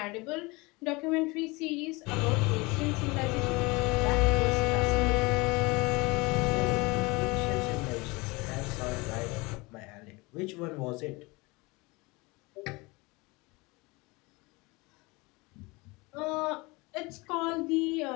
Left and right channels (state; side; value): quieter; right; 24.8 dB